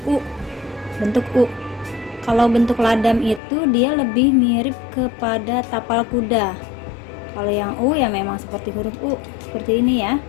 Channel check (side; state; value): right; drops out; at 3.4 s